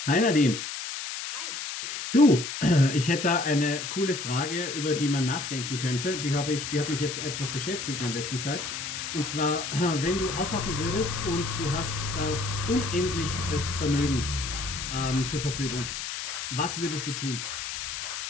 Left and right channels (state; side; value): noise; left; hiss, 6 dB below the sound